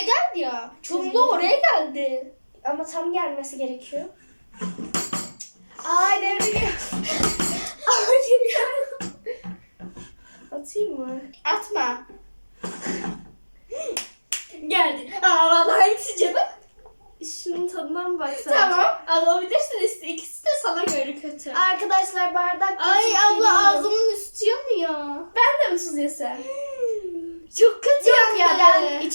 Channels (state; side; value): inverted; both; correlation -1.00